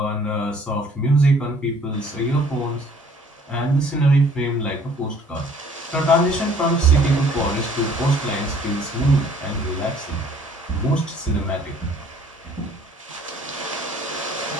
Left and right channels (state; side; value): normal; both; correlation 0.56